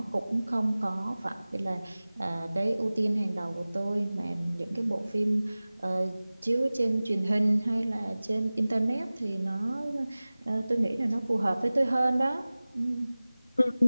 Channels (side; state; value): both; inverted; correlation -0.98